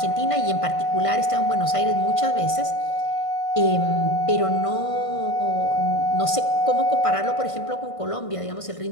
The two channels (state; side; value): late; right; 1.5 ms